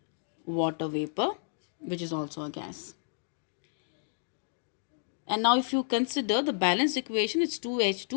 water vapor, which is also a gas. And now if you consider the balanced equation, it's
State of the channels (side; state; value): right; silent; digital silence